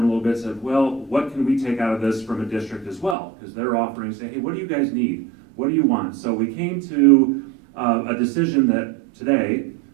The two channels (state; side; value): drops out; left; at 3.2 s